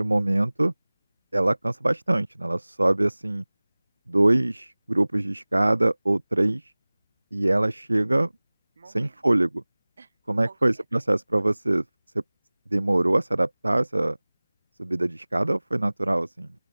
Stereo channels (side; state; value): both; inverted; correlation -1.00